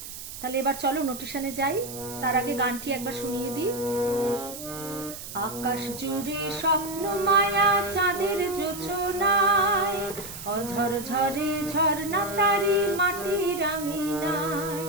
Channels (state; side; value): noise; right; hiss, 11 dB below the sound